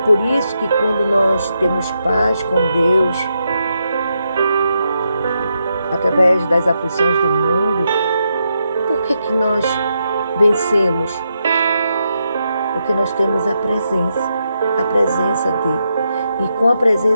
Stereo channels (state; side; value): inverted; both; correlation -0.83